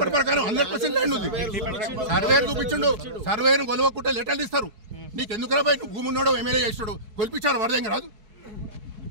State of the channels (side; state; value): left; late; 4.6 ms